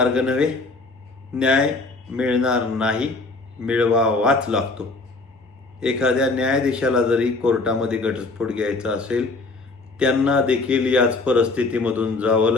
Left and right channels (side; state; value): right; quieter; 3.5 dB